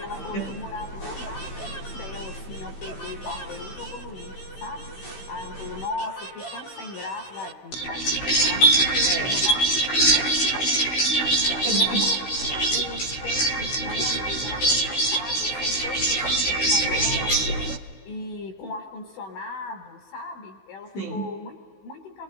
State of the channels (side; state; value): right; late; 16 ms